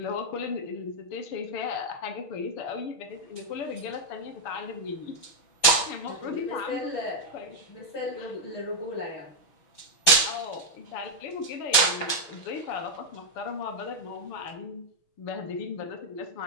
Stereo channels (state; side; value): late; right; 6.0 ms